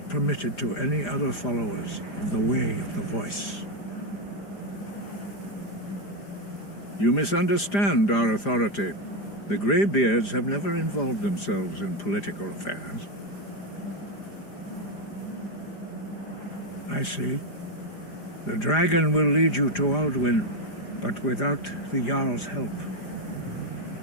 permitted to any other followers of the Way of the Voice. You misunderstand our authority. The Greybeards have never involved themselves in political affairs. I see. The dragon will lead you to Alduin, but without the Jarl's help.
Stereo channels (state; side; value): late; right; 5.0 ms